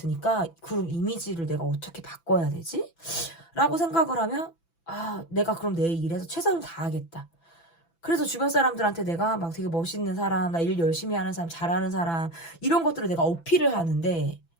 그럼 이미지를 내가 어떻게 바꿔야 되지? 라고 생각을 하면, 내가 그럼 내 일에서 최선을 다하겠다. 그래서 주변 사람들한테 내가 막 되게 멋있는 사람, 나 일 열심히 하는 사람, 잘하는 사람, 이런 것들을 내가 어필을 하는데,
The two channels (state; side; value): late; right; 6.0 ms